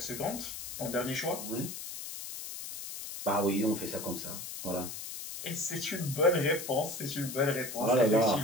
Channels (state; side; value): noise; left; hiss, 8 dB below the sound